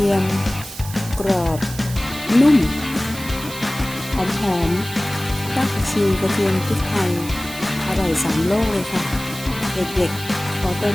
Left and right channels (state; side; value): noise; right; hiss, 13 dB below the sound